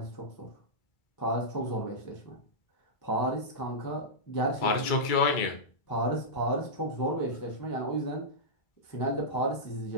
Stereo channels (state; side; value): late; right; 2.2 ms